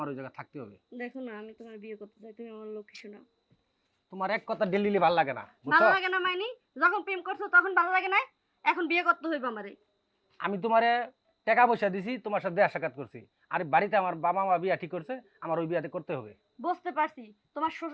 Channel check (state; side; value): identical; both; correlation 1.00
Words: ওই জায়গায় থাকতে হবে। দেখো না, আমি তোমার বিয়ে করতে চাই, তুমি আমার লক্ষ্মী শোনা। তোমার এক কথা ডেলি ভালো লাগে না, ভালো বুঝছো? লাগে না মাইনি? যখন প্রেম করছো তখন ভালো লাগে না, এখন বিয়ে করতে হইবে আমারে। আমি তোমারে টাকা পয়সা দিছি, তোমার সাথে দেখা সাক্ষাৎ করছি। আর বাড়িতে আমার বাবা মা বিয়া ঠিক করছে, আমার ওই বিয়াতে করতে হবে। বুঝতে পারছি, তোমার